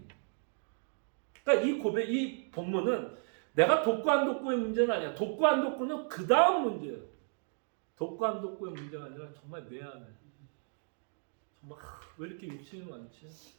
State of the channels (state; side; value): silent; left; 55 dB below the other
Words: 그러니까 이 본문은 내가 돕고 안 돕고의 문제는 아니야. 돕고 안 돕고는 그 다음 문제예요. 돕고 안 돕고의 문제가 아니라 정말 내 안에 정말 왜 이렇게 욕심이 많지?